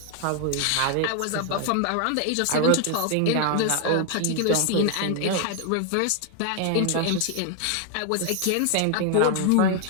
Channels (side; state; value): both; different; correlation 0.00